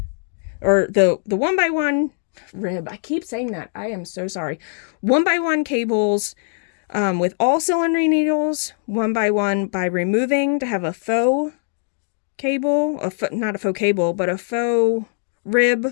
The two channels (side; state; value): right; silent; 65 dB below the other